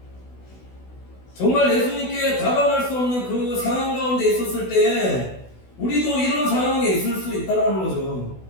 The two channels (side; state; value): right; late; 16 ms